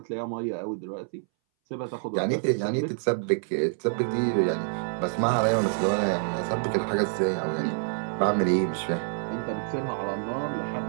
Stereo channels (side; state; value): left; silent; 60 dB below the other